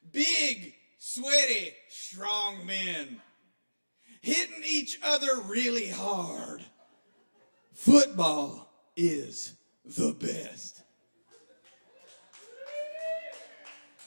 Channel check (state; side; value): inverted; both; correlation -1.00